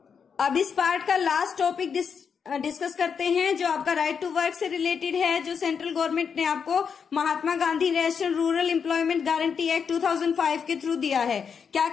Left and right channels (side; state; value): right; quieter; 6.5 dB